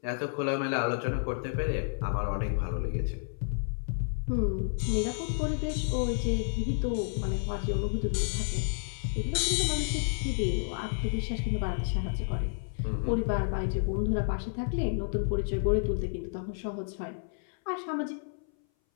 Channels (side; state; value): right; silent; 57 dB below the other